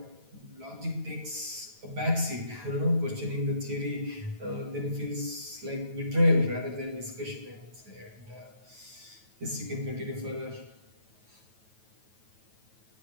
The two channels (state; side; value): late; left; 9.1 ms